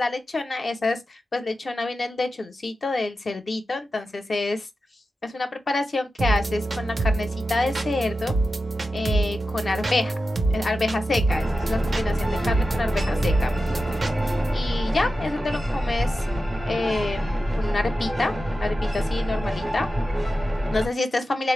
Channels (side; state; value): both; normal; correlation 0.92